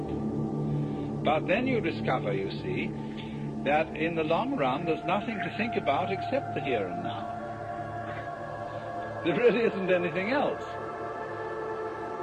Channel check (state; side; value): identical; both; correlation 1.00